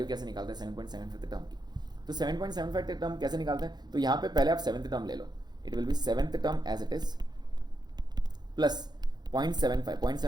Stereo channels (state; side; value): late; left; 0.20 ms